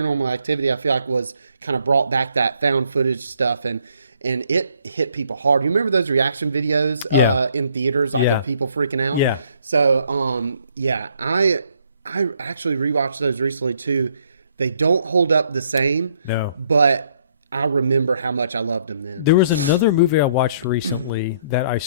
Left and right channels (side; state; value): both; inverted; correlation -0.66